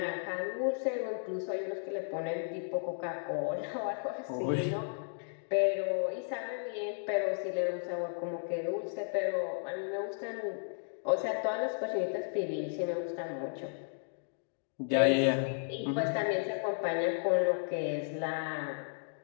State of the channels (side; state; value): right; silent; digital silence